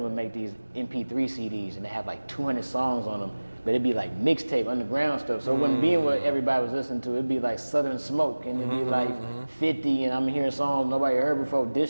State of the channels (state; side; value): inverted; both; correlation -1.00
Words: would make these MP3 CDs and they have like 200 songs on them, but it'd be like mixtape, underground stuff. So it wouldn't be what everybody was listening to. It'd be like Southern Smoke and it'd be like 50, and I'm hearing songs nobody heard before,